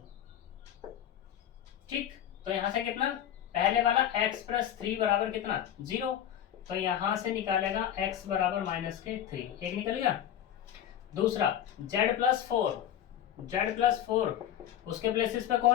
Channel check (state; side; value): quieter; right; 10.6 dB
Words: ठीक, तो यहां से कितना, पहले वाला x + 3 बराबर कितना 0, तो यहां से निकालेगा x बराबर -3, एक निकल गया। दूसरा z + 4 उसके प्लेसेस पे